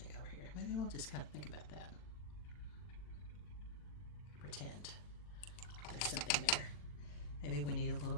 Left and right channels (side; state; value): right; late; 40 ms